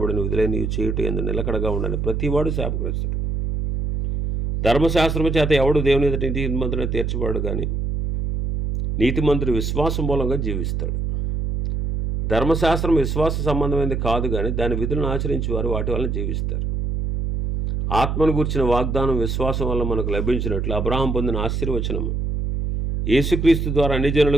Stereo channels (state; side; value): noise; right; hum, 1 dB below the sound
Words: విధులైన నీవు చేయుట ఎందు నిలకడగా ఉండని ప్రతివాడు శాపగ్రస్తుడు. ధర్మశాస్త్రము చేత ఎవడు దేవుని ఎదుట నీతిమంతుడని తీర్చబడు, కానీ నీతిమంతుడు విశ్వాసం మూలంగా జీవిస్తాడు. ధర్మశాస్త్రం విశ్వాస సంబంధమైనది కాదు, కానీ దాని విధులను ఆచరించి వారు వాటి వలన జీవిస్తారు. ఆత్మను గూర్చిన వాగ్దానం విశ్వాసం వల్ల మనకు లభించినట్లు అబ్రహాం పొందిన ఆశీర్వచనము యేసుక్రీస్తు ద్వారా అన్ని